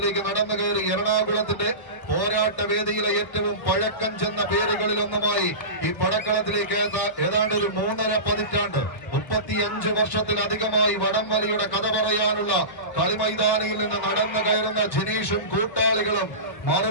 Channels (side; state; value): right; late; 1.5 ms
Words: നടന്നു കയറി എറണാകുളത്തിന്റെ പോരാട്ട വേദിയിലെ ഏറ്റവും പഴക്കം ചെന്ന പേരുകളിലൊന്നുമായി ഈ പടക്കളത്തിലേക്ക് ഏതാണ്ട് ഒരു 3.5 പതിറ്റാണ്ട് 35 വർഷത്തിലധികമായി വടംവലിയുടെ കഥ പറയാനുള്ള കളിമൈതാനിയിൽ നിന്ന് നടന്നു കയറുന്ന ജിനീഷും കൂട്ടാളികളും